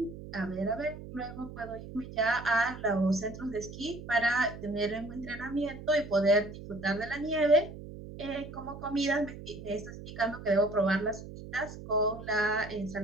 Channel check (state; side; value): noise; right; hum, 12 dB below the sound